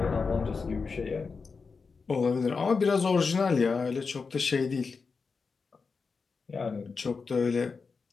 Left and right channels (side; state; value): right; quieter; 4.9 dB